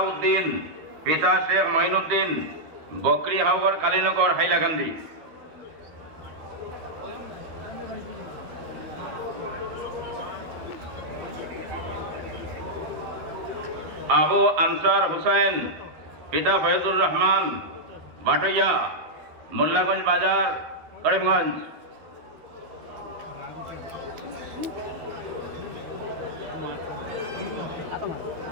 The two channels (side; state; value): left; late; 13 ms